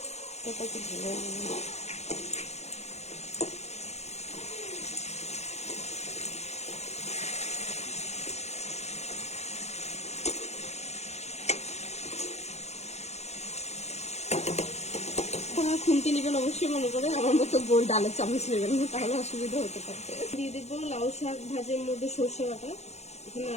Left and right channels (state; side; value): late; right; 0.32 ms